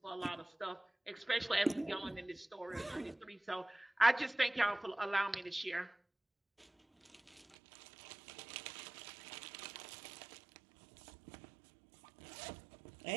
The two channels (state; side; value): drops out; left; at 7.6 s